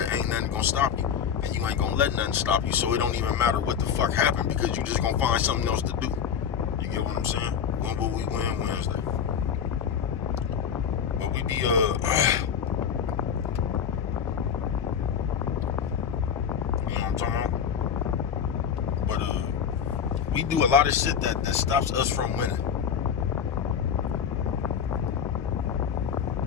ain't nothing gonna stop you. And you ain't gonna let nothing stop you, so it don't even matter what the fuck happened because you just gonna find something else to do. You get what I'm saying? When will we win Wednesday? But we be you know what I'm talking about? But we do a lot of shit that stops us from winning.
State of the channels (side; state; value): right; quieter; 7.8 dB